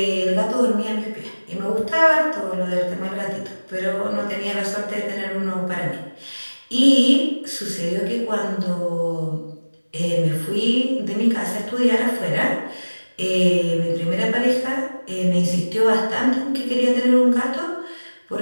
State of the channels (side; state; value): both; inverted; correlation -1.00